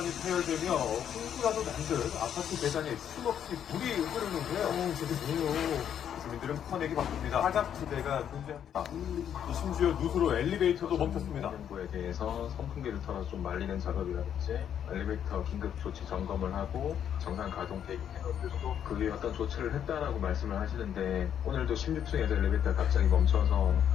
파열되며 홍수라도 난 듯 아파트 계단에 쉼없이 물이 흐르는데요. 저게 뭐예요? 주민들은 퍼내기 바쁩니다. 사각지대가 존재합니다. 심지어 누수로 엘리베이터도 멈췄습니다. 정부에 대해서 선풍기를 털어서 좀 말리는 작업이라든지 엘리베이터 긴급 조치 점검을 하고 정상 가동 대기해놓고 그 위에 어떤 조치를 했다라고 말씀을 하시는데 오늘도 16층에서 엘리베이터가 갑자기 멈춰서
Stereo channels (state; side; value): quieter; right; 9.2 dB